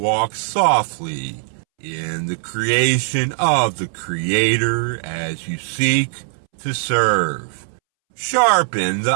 softly in the creation of the Creator as you seek to serve. Sharpen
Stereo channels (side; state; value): left; silent; 66 dB below the other